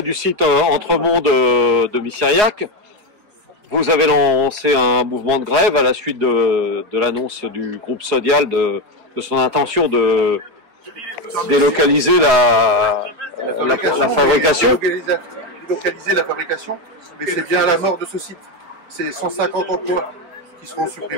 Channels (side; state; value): left; late; 4.8 ms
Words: du site Entremont de Missiriac. Vous avez lancé un mouvement de grève à la suite de l'annonce du groupe Sodial de son intention de délocaliser la fabrication. Délocaliser la fabrication, mais c'est bien à la mort de ce site. C'est 150 emplois qui seront